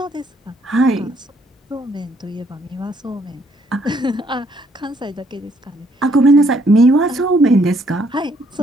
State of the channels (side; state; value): both; normal; correlation 0.68